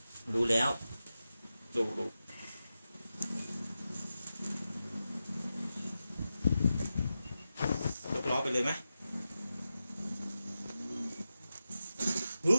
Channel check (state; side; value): inverted; both; correlation -0.91